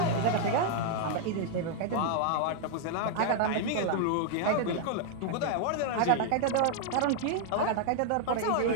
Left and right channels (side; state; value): both; different; correlation 0.00